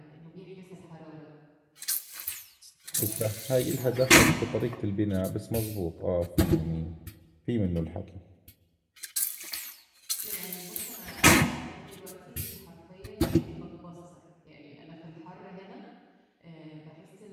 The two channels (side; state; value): both; identical; correlation 1.00